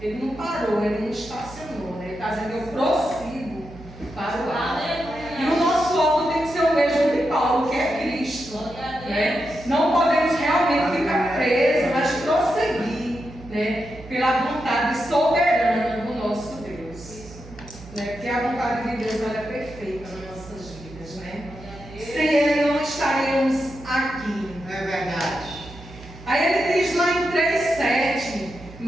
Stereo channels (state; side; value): noise; right; hum, 17 dB below the sound